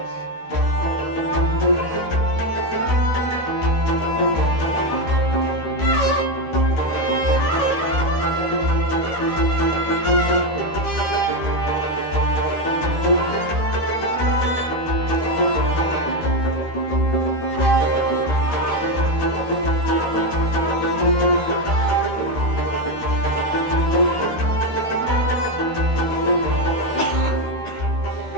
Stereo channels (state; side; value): late; right; 13 ms